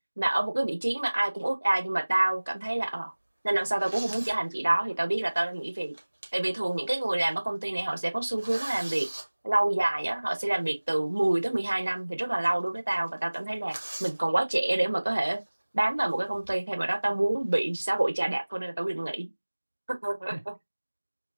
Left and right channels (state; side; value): inverted; both; correlation -1.00